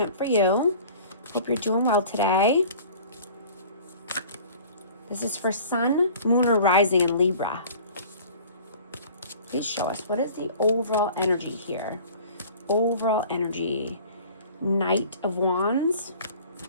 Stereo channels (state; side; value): inverted; both; correlation -0.46